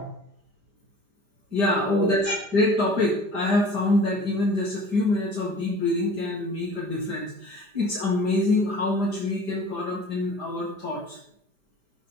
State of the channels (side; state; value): left; late; 5.0 ms